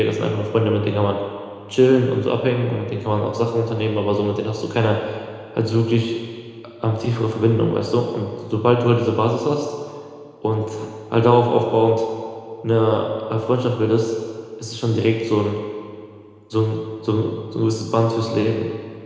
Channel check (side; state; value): both; identical; correlation 1.00